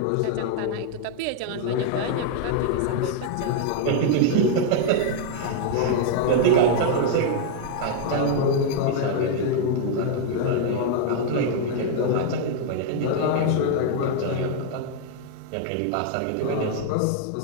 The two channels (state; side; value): different; both; correlation 0.00